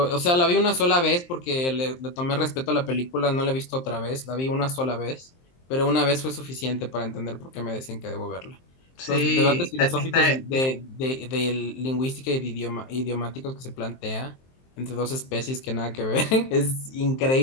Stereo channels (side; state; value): right; late; 23 ms